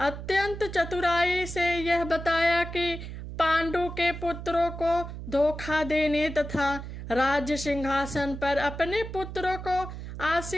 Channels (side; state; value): right; noise; hum, 9 dB below the sound